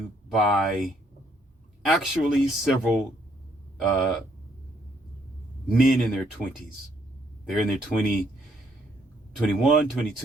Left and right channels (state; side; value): normal; both; correlation 0.69